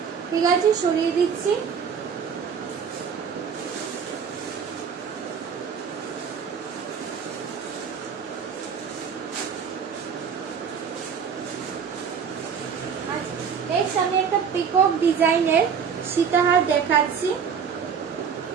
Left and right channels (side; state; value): left; quieter; 6.9 dB